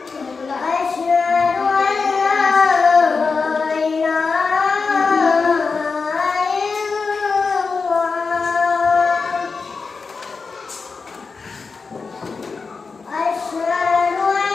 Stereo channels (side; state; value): right; quieter; 4.7 dB